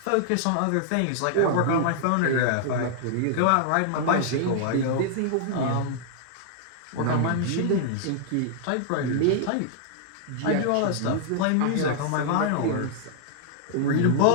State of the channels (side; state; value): both; different; correlation -0.01